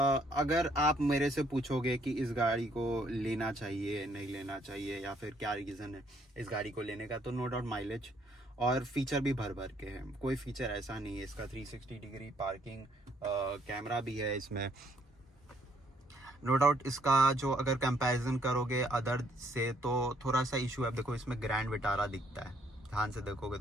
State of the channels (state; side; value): normal; both; correlation 0.68